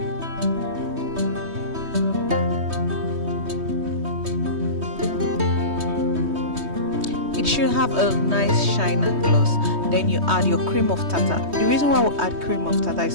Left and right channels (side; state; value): left; late; 3.2 ms